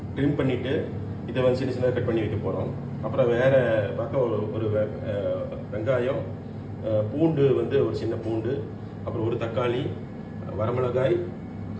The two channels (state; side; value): identical; both; correlation 1.00